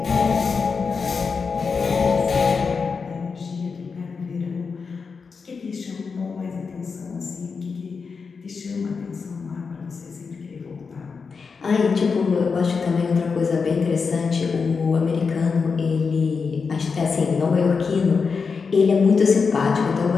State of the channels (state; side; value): quieter; right; 5.2 dB